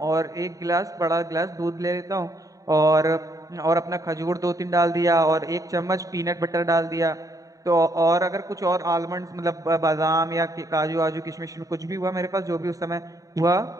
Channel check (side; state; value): left; late; 0.16 ms